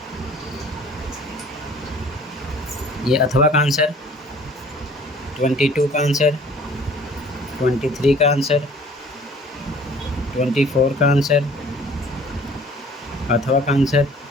ये अथवा का आंसर, 22 का आंसर, 23 का आंसर, 24 का आंसर, अथवा का आंसर,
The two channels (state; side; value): normal; both; correlation 0.52